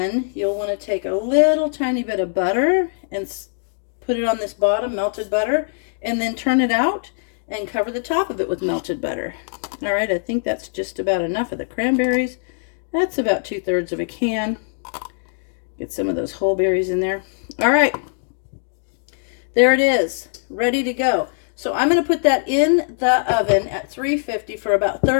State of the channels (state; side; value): silent; right; digital silence